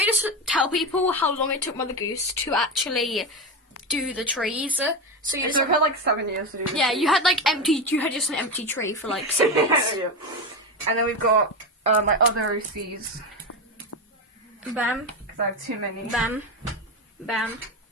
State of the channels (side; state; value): both; normal; correlation 0.16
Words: tell people how long it took Mother Goose to actually do the trees? So you I've had 7 years to do this. Yeah, you had just an empty tree for 6 months. Yeah. And then we've got my other OCs. Bam. Because I have too many. Bam. Bam.